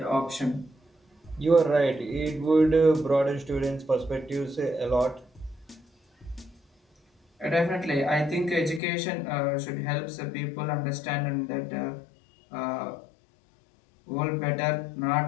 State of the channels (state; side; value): drops out; right; at 8.8 s